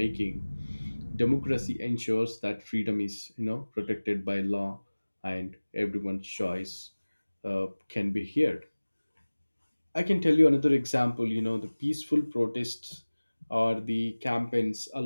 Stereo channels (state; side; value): inverted; both; correlation -1.00